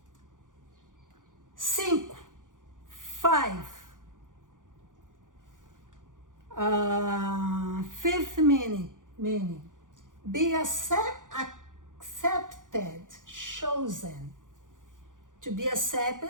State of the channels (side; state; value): left; late; 0.88 ms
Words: 5. Fifth meaning. Be accepted, chosen. To be